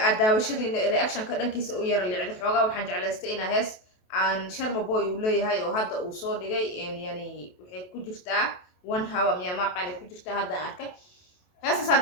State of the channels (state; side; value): late; right; 28 ms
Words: وشدي رياكشن كذا كيس وير اللي عند حوجا وحنج على استئنا هس عن شرم بوي ولا هاي وهذا وصور جاي إن يعني وحي كجرتا وان هوا ميا ما قاني كجرتا هذا أركه هسه